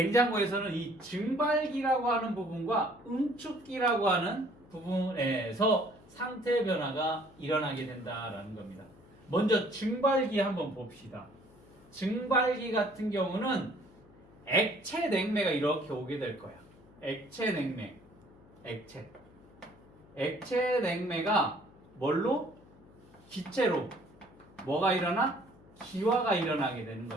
이 증발기라고 하는 부분과 응축기라고 하는 부분에서 상태 변화가 일어나게 된다라는 겁니다. 먼저 증발기 한번 봅시다. 증발기 같은 경우는 액체 냉매가 이렇게 오게 될 거야. 액체 냉매. 액체 냉매가 뭘로? 기체로 뭐가 일어나? 기화가 일어나게 되는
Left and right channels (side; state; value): left; noise; hum, 25 dB below the sound